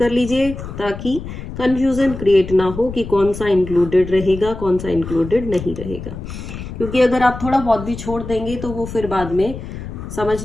लीजिए ताकि कंफ्यूजन क्रिएट ना हो कि कौन सा इंक्लूडेड रहेगा, कौन सा इंक्लूडेड नहीं रहेगा। क्योंकि अगर आप थोड़ा बहुत भी छोड़ देंगे तो वो फिर बाद में समझ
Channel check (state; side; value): noise; left; rumble, 10 dB below the sound